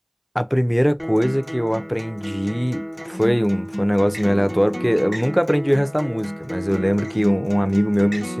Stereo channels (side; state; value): both; identical; correlation 1.00